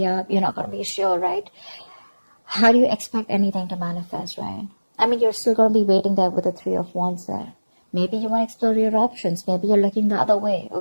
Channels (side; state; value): both; inverted; correlation -1.00